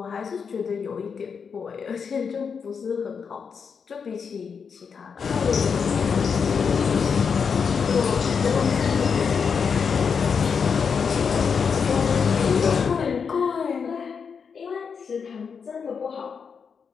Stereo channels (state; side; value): quieter; right; 6.1 dB